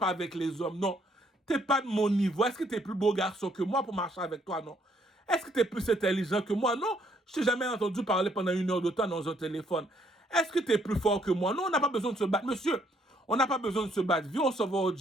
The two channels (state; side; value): normal; both; correlation 0.68